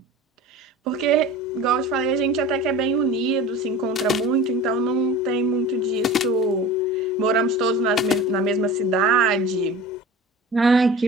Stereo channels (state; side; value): normal; both; correlation 0.38